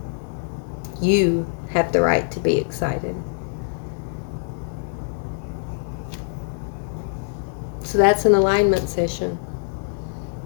You have the right to be excited. So that's an alignment session.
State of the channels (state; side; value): silent; right; digital silence